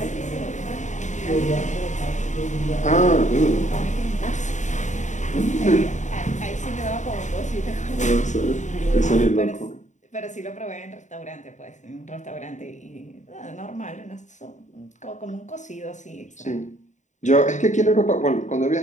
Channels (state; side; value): late; right; 0.35 ms